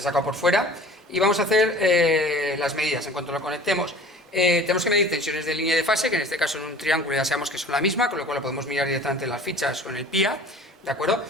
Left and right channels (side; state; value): both; normal; correlation 0.45